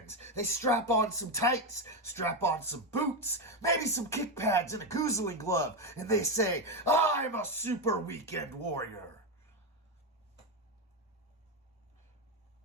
they strap on some tights, strap on some boots, maybe some kick pads and a goozling glove, and they say, I'm a Super Weekend Warrior.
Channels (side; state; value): both; normal; correlation 0.10